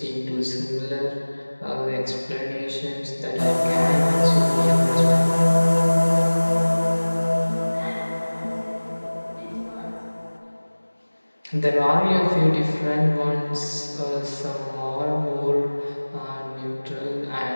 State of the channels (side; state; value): both; inverted; correlation -1.00